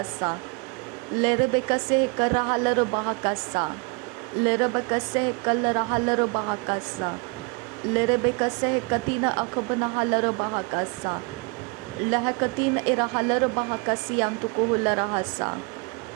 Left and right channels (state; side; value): quieter; left; 30.9 dB